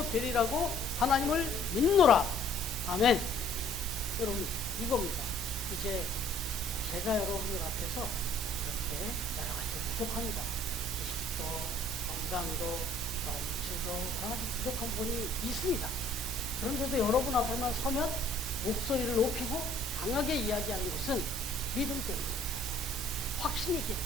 되리라고 하나님을 믿노라. 아멘. 여러분 이겁니다. 이제 제가 여러분들 앞에서 이렇게 여러 가지 부족합니다. 지식도 건강도 물질도 여러 가지 부족한 부분이 있습니다. 그런데도 여러분 앞에만 서면 목소리를 높이고 강하게 이야기하는 것은 믿음 때문입니다. 확신이 있기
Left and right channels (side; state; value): both; normal; correlation 0.57